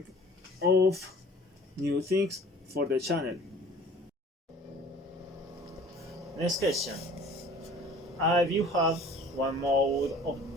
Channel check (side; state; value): both; normal; correlation 0.48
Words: of new things for the channel. Next question. If you have one mode of